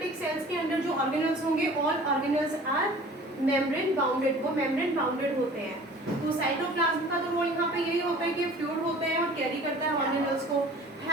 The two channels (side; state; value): both; normal; correlation 0.46